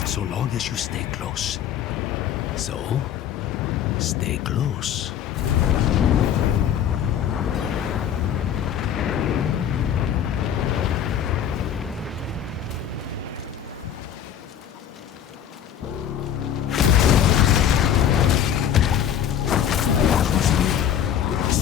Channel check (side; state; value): right; quieter; 9.4 dB